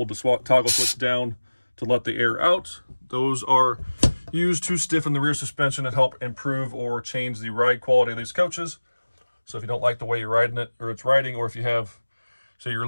the toggle switch down to let the air out. Those are used to stiffen the rear suspension and help improve or change the ride quality of these coaches. So if you don't like the way you're riding it, or it's riding, or if you have, say you're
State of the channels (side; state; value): both; inverted; correlation -1.00